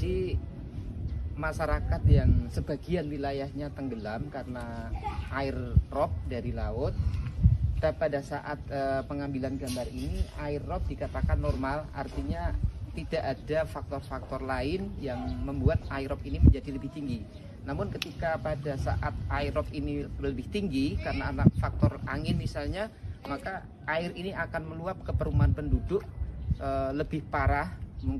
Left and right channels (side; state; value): both; identical; correlation 1.00